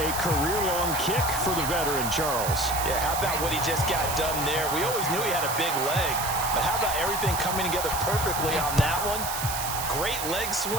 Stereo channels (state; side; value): noise; right; hiss, 5 dB below the sound